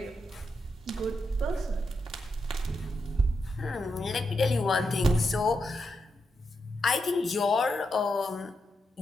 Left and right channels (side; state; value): both; normal; correlation 0.85